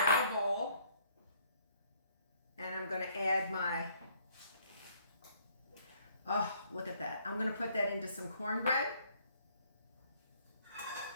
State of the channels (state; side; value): inverted; both; correlation -0.64